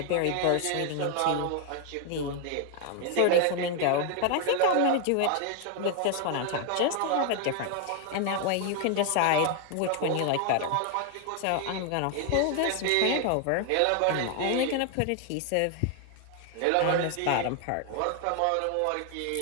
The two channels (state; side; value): different; both; correlation 0.00